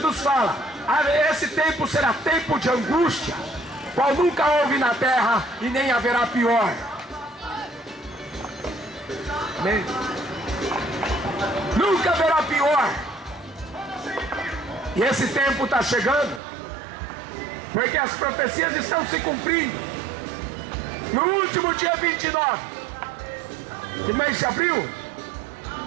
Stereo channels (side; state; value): left; drops out; at 16.4 s